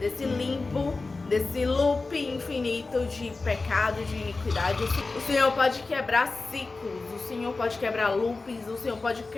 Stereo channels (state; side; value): quieter; right; 3.7 dB